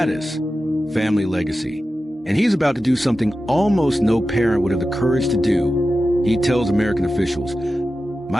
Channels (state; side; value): normal; both; correlation 0.93